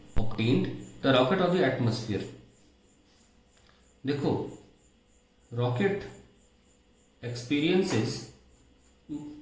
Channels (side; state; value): both; identical; correlation 1.00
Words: obtained, the rocket or the atmosphere? देखो, rocket experiences